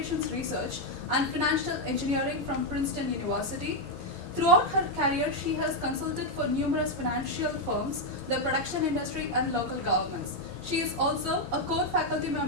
research and financial engineering from Princeton University. Throughout her career, she has consulted for numerous financial firms, the production industry, and local governments. She is also a core faculty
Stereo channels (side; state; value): both; normal; correlation 0.01